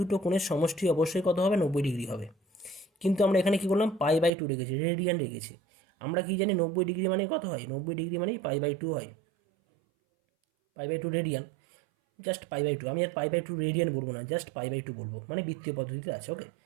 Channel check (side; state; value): left; drops out; at 4.3 s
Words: কোণের সমষ্টি অবশ্যই কত হবে? 90 ডিগ্রি হবে। কিন্তু আমরা এখানে কী করলাম? π/2 রেখেছি, রেডিয়ান রেখেছি। আমরা কি জানি 90 ডিগ্রি মানে কত হয়? 90 ডিগ্রি মানেই π/2 হয়, π/2 রেডিয়ান, জাস্ট π/2। আমি আর π/2 রেডিয়ান বলবো না, জাস্ট π/2 বলবো, মানে বৃত্তীয় পদ্ধতিতে আছে। ওকে,